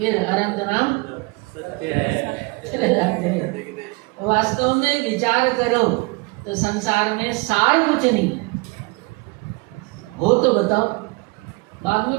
अनंत नाम चले जाते हैं। वास्तव में विचार करो तो संसार में सार कुछ नहीं हो तो बताओ, बाद में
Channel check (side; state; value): left; quieter; 27.1 dB